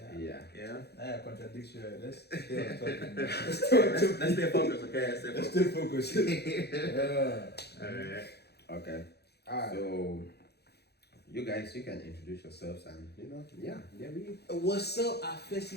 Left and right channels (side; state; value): right; late; 0.48 ms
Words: Yeah. yeah. That contradiction. Let's stay on topic. Let's stay focused, okay? Let's stay focused. Yeah. Alright. Okay. Alright. So, you guys, you can introduce yourselves and we. What's up,